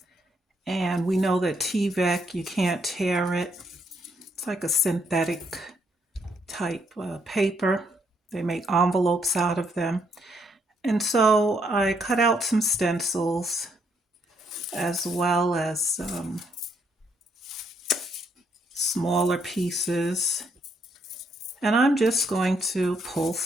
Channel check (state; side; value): normal; both; correlation 0.73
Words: and we know that Tyvek, you can't tear it. It's like a synthetic type paper. They make envelopes out of them. And so I cut out some stencils as well as smaller pieces. And I'm just going to pull